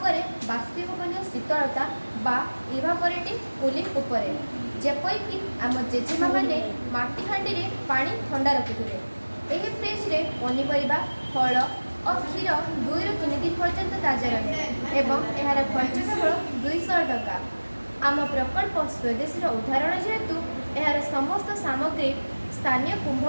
करे बाष्पीभवन शीतलता बा इवापोरेटिव कूलिंग उपर जेपरिक आम जेजेमा मैंने माटी हांडी रे पानी ठंडा रखुए। यह फ्रिज रे पनीपरिया फल और क्षीर 2 ରୁ 3 दिन पर्यंत ताजा रहे एवं यार खर्च केवल 200 टका। आम प्रकल्प स्वदेशी उदाहरण जेहेतु यार समस्त सामग्री स्थानीय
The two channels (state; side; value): inverted; both; correlation -1.00